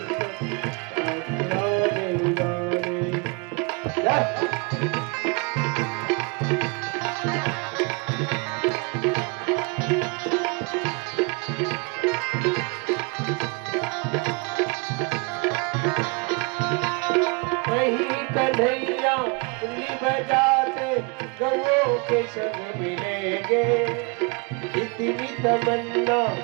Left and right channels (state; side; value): quieter; left; 31.4 dB